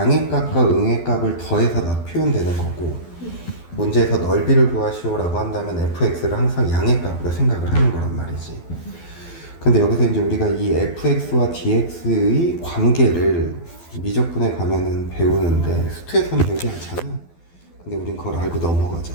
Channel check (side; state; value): right; late; 12 ms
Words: 값과 응의 값을 더해서 표현되는 거고, 문제에서 넓이를 구하시오 라고 한다면 fx를 항상 양의 값으로 생각을 하는 거란 말이지. 근데 여기서 이제 우리가 이 fx와 dx의 관계를 미적분에 가면은 배우는데 수투에서는 배우지 않잖아. 근데 우린 그걸 알고